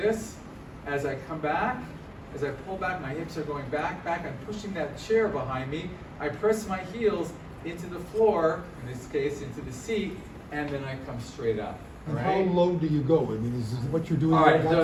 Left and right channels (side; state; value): both; identical; correlation 1.00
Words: As I come back, as I pull back, my hips are going back. I'm pushing that chair behind me. I press my heels into the floor, in this case into the seat, and then I come straight up. And how Right? low do you go? I mean, is what you're doing? All right, like